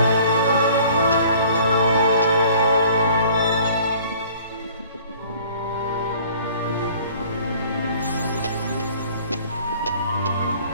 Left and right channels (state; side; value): inverted; both; correlation -0.52